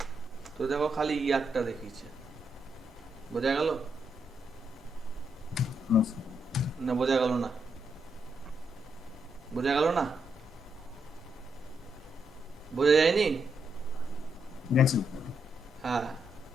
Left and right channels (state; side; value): normal; both; correlation 0.80